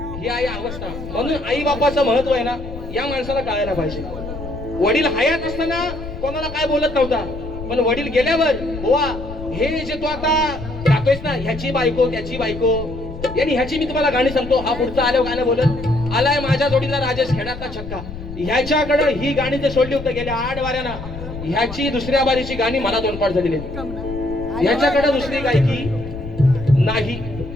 ही आहे अवस्था. म्हणून आई बापाचं महत्व आहे ना, या माणसाला कळायला पाहिजे. वडील हयात असताना कोणाला काय बोलत नव्हता, पण वडील गेल्यावर बुवा हे जे तू आता गातोयस ना, ह्याची बायको त्याची बायको, आणि ह्याची मी तुम्हाला गाणी सांगतो. हा पुढचा आल्यावर गाणं बोलत आलाय माझ्या जोडीला राजेश खेड्यातला छक्का. ह्याच्याकडे ही गाणी जे सोडली होती गेल्या 8 वाऱ्याना, ह्याची दुसऱ्या बारीची गाणी मला 2 पाठ झालेली. ह्याच्याकडे दुसरी गायकी नाही,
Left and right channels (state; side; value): noise; left; rumble, 11 dB below the sound